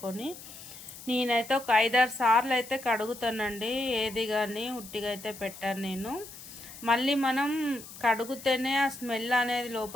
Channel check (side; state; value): left; noise; hiss, 15 dB below the sound